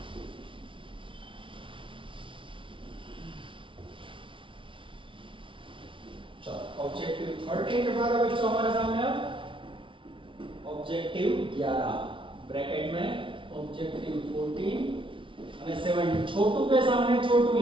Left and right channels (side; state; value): left; late; 0.25 ms